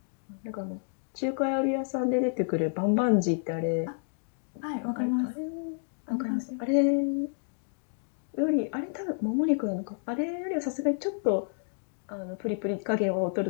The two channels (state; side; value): silent; right; digital silence